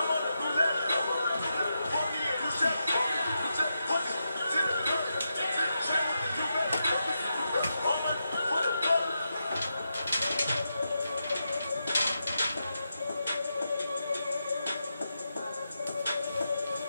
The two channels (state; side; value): inverted; both; correlation -0.86